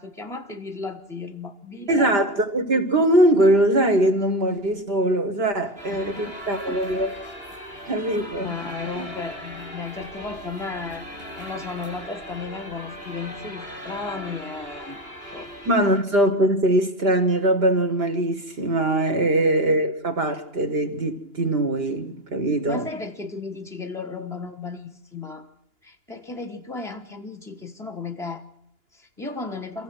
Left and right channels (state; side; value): late; left; 2.9 ms